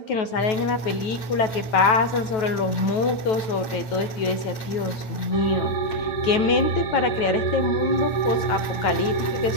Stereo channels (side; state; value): right; late; 9.2 ms